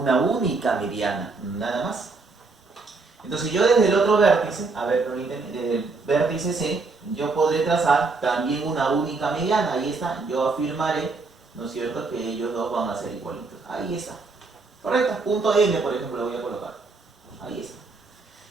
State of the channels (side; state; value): left; quieter; 4.0 dB